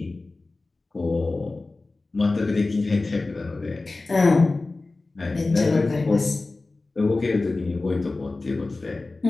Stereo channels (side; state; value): right; quieter; 3.3 dB